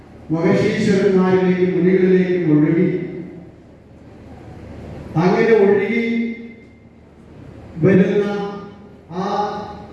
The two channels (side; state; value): both; identical; correlation 1.00